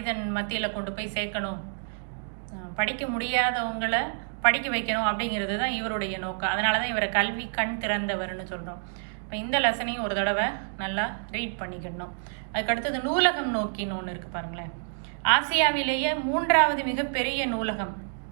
மத்தியில் கொண்டு போய் சேர்க்கணும், படிக்க முடியாதவங்களை படிக்க வைக்கணும் அப்படிங்கிறது தான் இவருடைய நோக்கம். அதனால தான் இவரை கல்வி கண் திறந்தவர்னு சொல்கிறோம். இப்போ இந்த லெசனையும் ஒரு தடவை நல்லா ரீட் பண்ணிக்கணும். அதுக்கடுத்தது நூலகம் நோக்கின்னு ஒன்று இருக்குது பாருங்களேன். ஆசியாவிலேயே 3வது மிகப்பெரிய நூலகம்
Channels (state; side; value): silent; left; digital silence